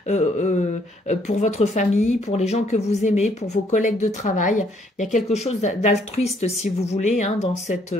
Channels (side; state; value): both; normal; correlation 0.67